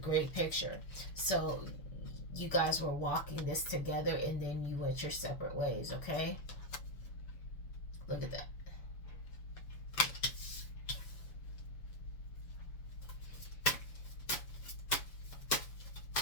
picture. So you guys were walking this together and then you went your separate ways, okay? Look at that.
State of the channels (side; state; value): right; late; 7.0 ms